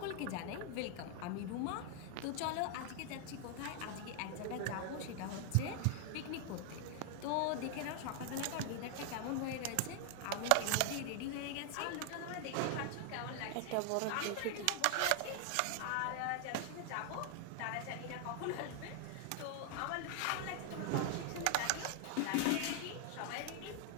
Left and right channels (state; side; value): different; both; correlation 0.00